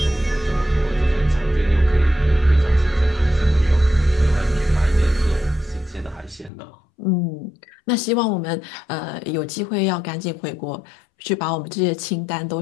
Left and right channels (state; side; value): drops out; right; at 6.5 s